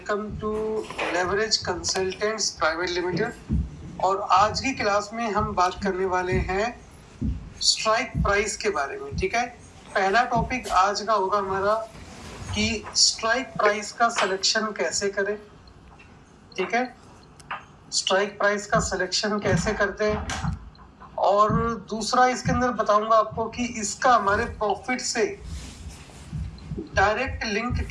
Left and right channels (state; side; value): identical; both; correlation 1.00